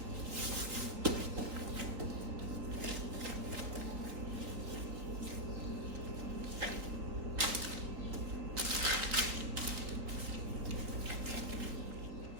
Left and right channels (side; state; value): left; late; 3.9 ms